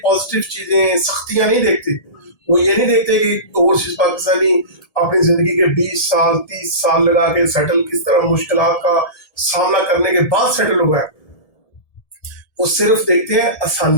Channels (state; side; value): late; right; 1.7 ms